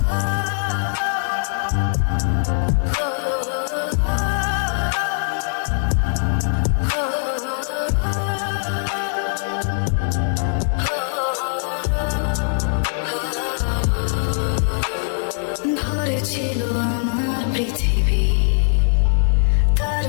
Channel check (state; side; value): silent; right; digital silence